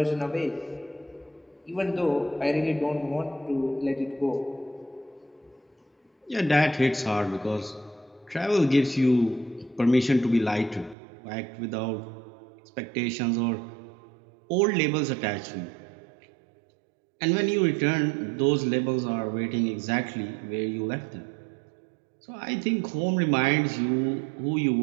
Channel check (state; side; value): drops out; left; at 11.0 s